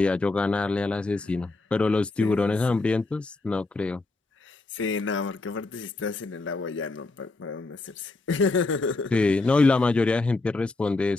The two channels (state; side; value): quieter; right; 3.3 dB